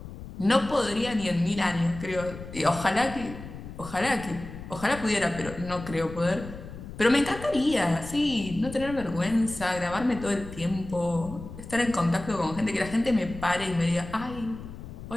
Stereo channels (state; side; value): noise; left; rumble, 12 dB below the sound